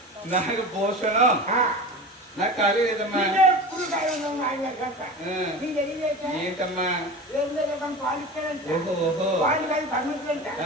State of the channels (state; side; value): normal; both; correlation 0.32